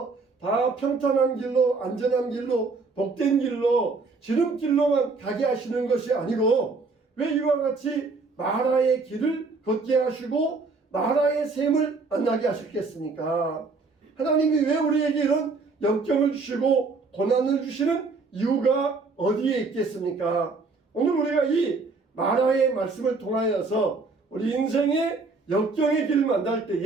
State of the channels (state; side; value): quieter; left; 4.1 dB